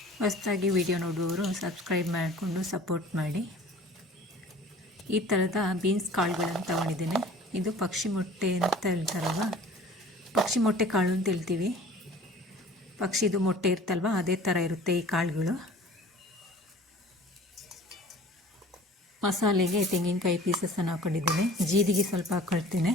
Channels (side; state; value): both; normal; correlation 0.47